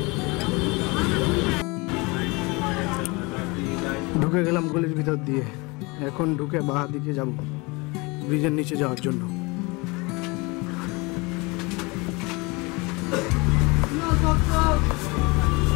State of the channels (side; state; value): right; quieter; 26.4 dB